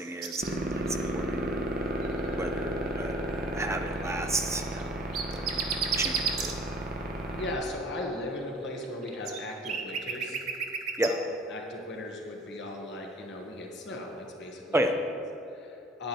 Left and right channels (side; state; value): both; normal; correlation 0.50